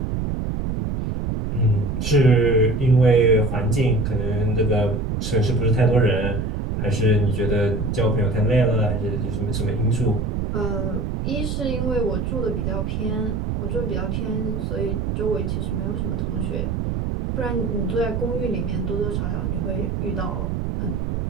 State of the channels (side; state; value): right; noise; rumble, 1 dB below the sound